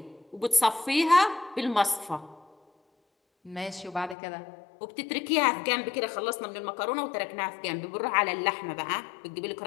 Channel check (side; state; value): right; drops out; at 4.2 s